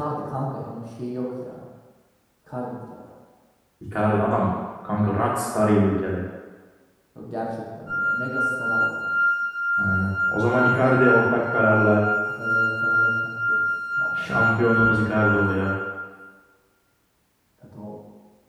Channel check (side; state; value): both; identical; correlation 1.00